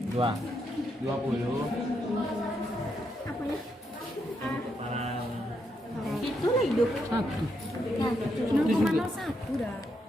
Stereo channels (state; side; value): normal; both; correlation 0.80